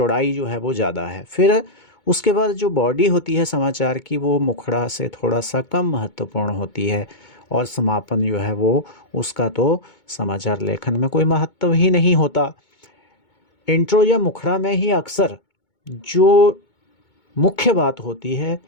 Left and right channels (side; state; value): right; late; 2.2 ms